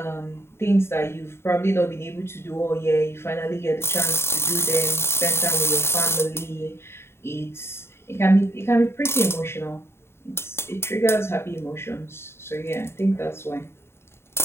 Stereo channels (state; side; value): late; right; 0.12 ms